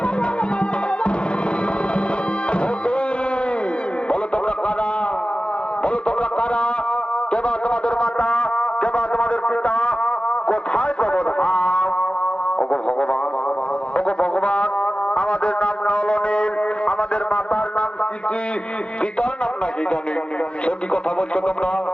বলো তোমরা কারা? বলো তোমরা কারা? কেবা তোমাদের মাতা, কেবা তোমাদের পিতা, কোথায় প্রবোধাম? ওগো ভগবান, ওগো ভগবান, আমাদের নাম নলনীল, আমাদের মাতার নাম কি, পিতার নাম নাকি জানি? সে কি কথা বলছো তোমরা?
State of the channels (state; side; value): late; right; 0.056 ms